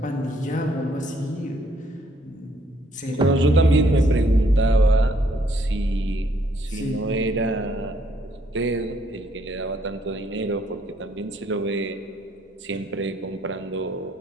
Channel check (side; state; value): both; normal; correlation 0.68